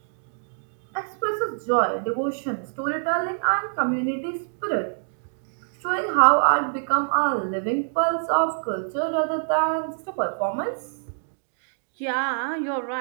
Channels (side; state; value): left; silent; digital silence